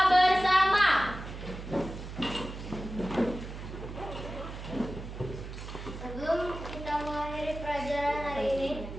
bersama. Sebelum kita mengakhiri pelajaran hari ini,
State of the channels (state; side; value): noise; right; hum, 10 dB below the sound